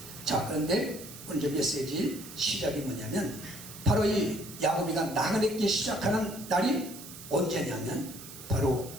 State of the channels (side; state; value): right; noise; hiss, 14 dB below the sound